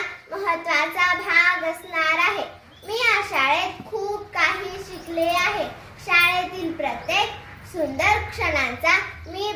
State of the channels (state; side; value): identical; both; correlation 1.00